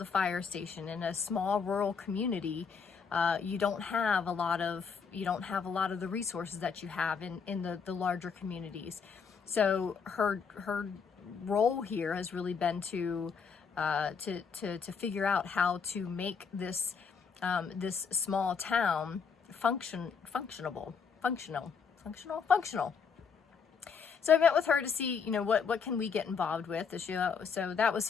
fire station. In a small rural community, you don't have a lot of the resources that you have in the larger communities. So her role here has really been to figure out how to make this small town functional. So I met with her to see, what can we get involved with. So that was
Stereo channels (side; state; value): right; quieter; 6.0 dB